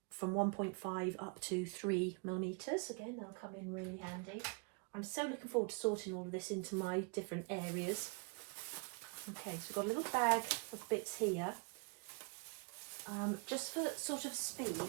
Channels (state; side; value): quieter; left; 35.0 dB